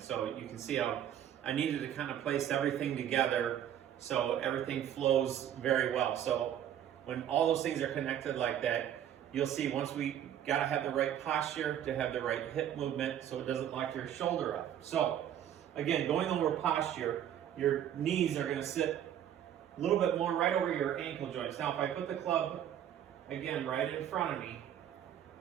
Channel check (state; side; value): quieter; left; 10.4 dB